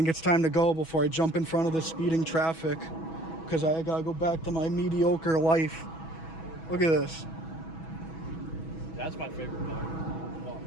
it's time to go before I jump in front of the speeding traffic. Because I gotta go back to my mediocre life. Look at this. That's my favorite car. Come on.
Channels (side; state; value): right; late; 6.1 ms